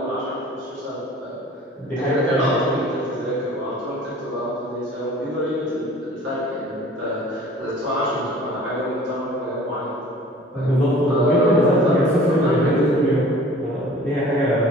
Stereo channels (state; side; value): normal; both; correlation 0.47